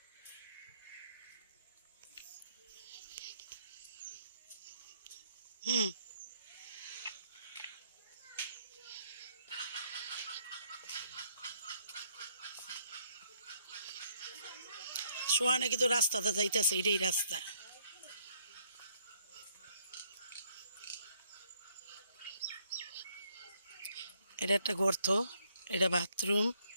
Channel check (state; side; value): inverted; both; correlation -0.68